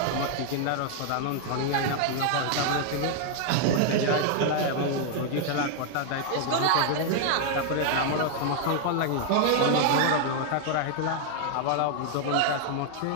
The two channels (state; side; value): different; both; correlation 0.00